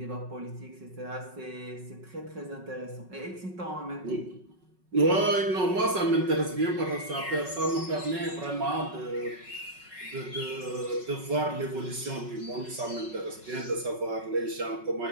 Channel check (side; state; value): left; late; 5.4 ms